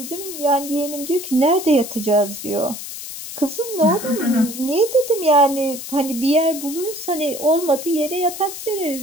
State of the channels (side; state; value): left; noise; hiss, 10 dB below the sound